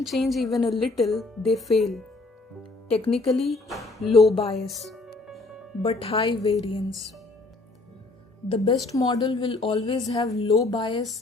change even a little, they fail. Technically, low bias, but high variance. The best model will always have low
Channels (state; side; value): quieter; right; 3.2 dB